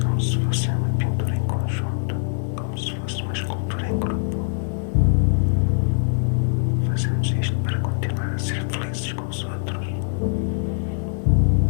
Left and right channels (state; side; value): silent; right; digital silence